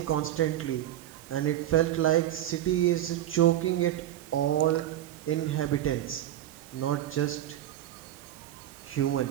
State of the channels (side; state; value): left; quieter; 12.5 dB